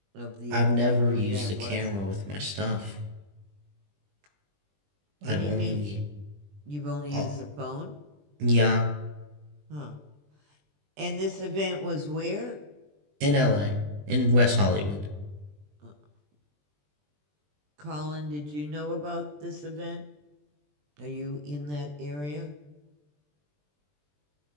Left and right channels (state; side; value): late; left; 20 ms